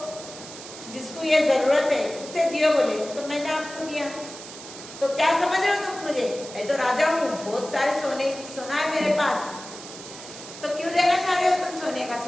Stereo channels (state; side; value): noise; right; hiss, 14 dB below the sound